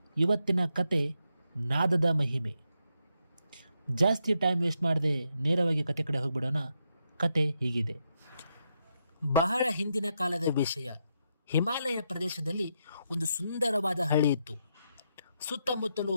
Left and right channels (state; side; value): inverted; both; correlation -0.82